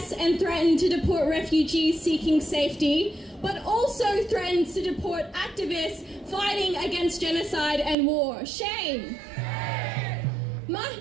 and threaten to deport refugees seeking safety, but also threatens to deport activists fighting against genocide and war. Shame!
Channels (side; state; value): left; drops out; at 8.0 s